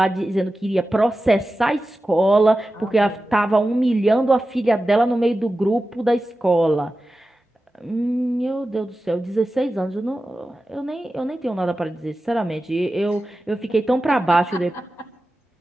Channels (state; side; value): normal; both; correlation 0.94